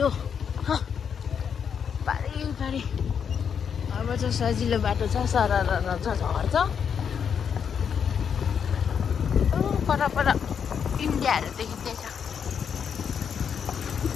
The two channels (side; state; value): right; quieter; 7.3 dB